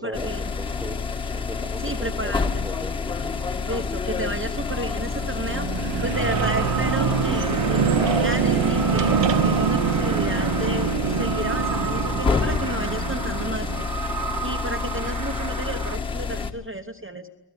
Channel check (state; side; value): normal; both; correlation 0.25